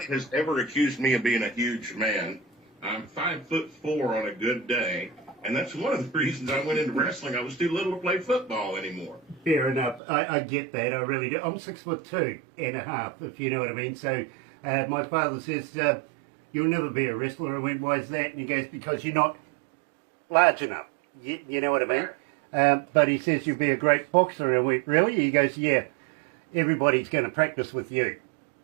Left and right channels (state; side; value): drops out; left; at 10.0 s